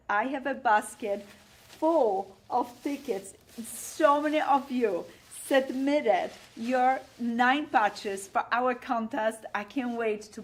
I have a basket full of tickets. So many of you submitted your 9 patches for our contest. I can't wait to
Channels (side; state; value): both; identical; correlation 1.00